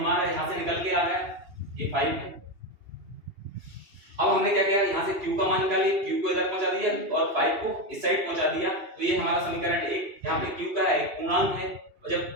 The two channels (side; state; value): left; late; 2.8 ms